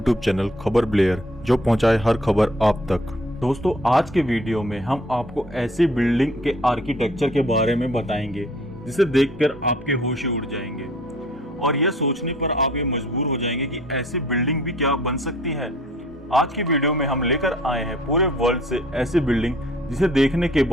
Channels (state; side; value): normal; both; correlation 0.55